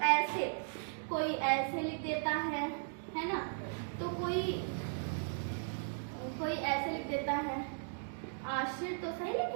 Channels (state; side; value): silent; left; digital silence